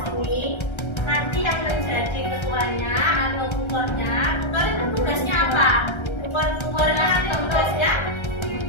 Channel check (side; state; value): right; late; 1.3 ms